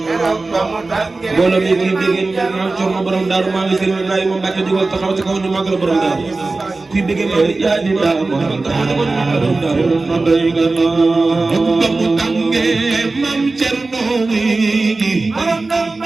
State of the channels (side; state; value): left; quieter; 3.5 dB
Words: mbooloo mi ngi dégg maam Cerno borom daaru maam Sëriñ Ibrahima Mbàkke jógal taxaw ci kaw ñu màggal borom daaru kuy dégg ma yaa di daa mo taxaw ci kaw ñu màggal borom daaru no day nga no ba mu tànge maam Cerno wi borom daaru